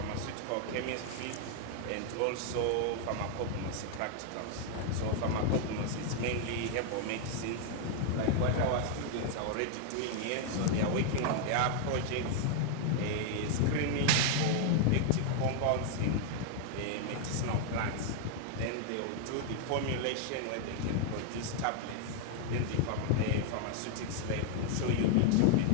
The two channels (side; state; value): both; different; correlation 0.00